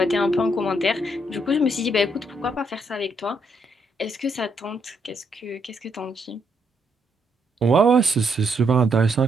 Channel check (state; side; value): normal; both; correlation 0.75